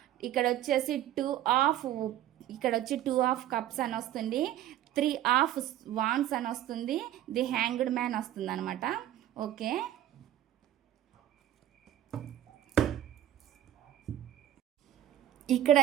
ఇక్కడ వచ్చేసి 2 ఆఫ్ కప్స్ అని వస్తుంది. 3 ఆఫ్ వాండ్స్ అని వస్తుంది. ది హ్యాంగ్డ్ మ్యాన్ వస్తుంది అనమాట. ఓకే,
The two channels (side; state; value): left; quieter; 12.4 dB